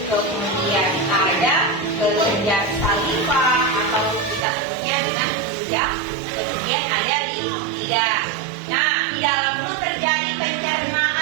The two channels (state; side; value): drops out; left; at 4.4 s